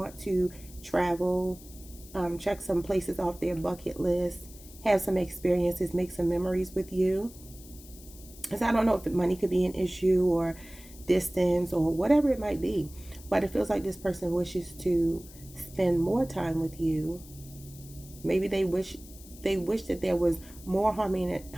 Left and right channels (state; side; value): noise; left; hiss, 20 dB below the sound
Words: to travel, check some places off their bucket list, have some experiences, make some memories with you. Because I don't know if money could be an issue or distance or whatever it might be, but it feels like this person wishes to spend more time with you. Maybe they wish that there was more